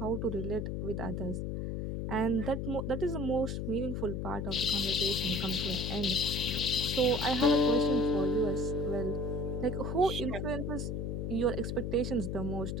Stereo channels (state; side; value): noise; left; hum, 2 dB below the sound